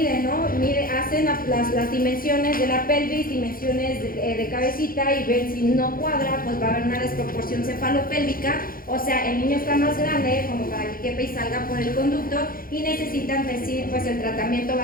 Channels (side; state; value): right; late; 0.42 ms